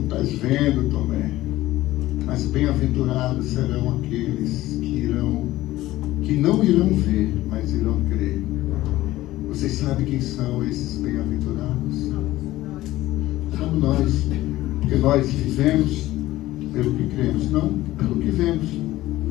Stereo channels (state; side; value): quieter; right; 16.3 dB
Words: estás vendo, Tomé. Mas bem-aventurados serão aqueles que não irão ver, mas irão crer. Vocês sabem quem são esses bem-aventurados? Somos nós, porque nós vivemos pelo que cremos, não pelo que vemos.